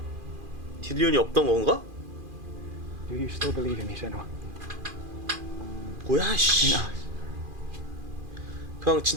딜리온이 없던 건가? Do you still believe in me, Senua? 뭐야 씨. In us? 그냥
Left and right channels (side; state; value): left; late; 2.4 ms